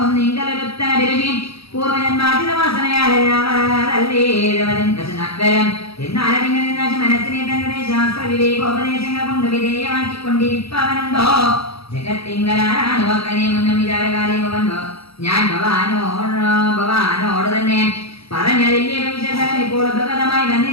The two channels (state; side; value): late; right; 0.77 ms